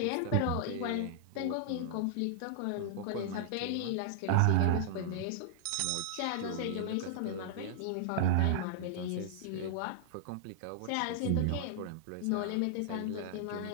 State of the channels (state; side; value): different; both; correlation -0.01